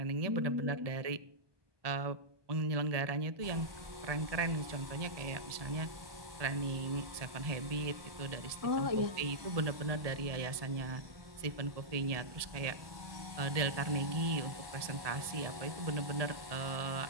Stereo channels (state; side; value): late; left; 1.2 ms